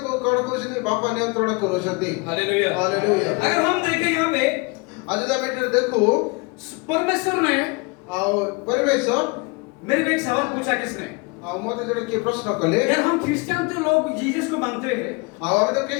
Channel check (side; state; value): right; quieter; 28.5 dB